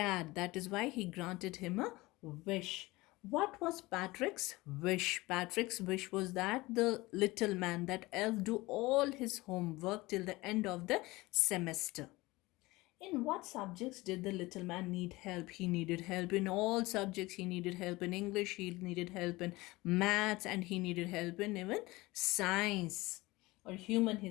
That is why he granted him a wish. What was Patrick's wish? Patrick's wish was that the little man, that elf, do all his homework till the end of the semester. In what subjects did the little man need help? He needed help in all subjects. He needed help in English, he needed help in maths, and he needed help in even science or human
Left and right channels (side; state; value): right; quieter; 20.9 dB